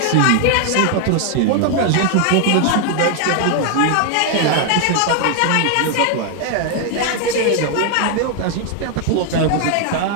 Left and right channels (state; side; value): different; both; correlation 0.00